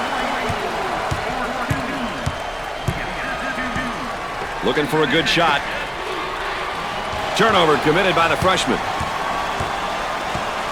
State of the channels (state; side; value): identical; both; correlation 1.00